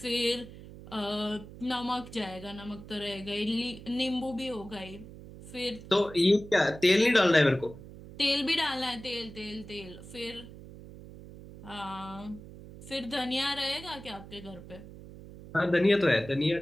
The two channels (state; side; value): noise; right; hum, 16 dB below the sound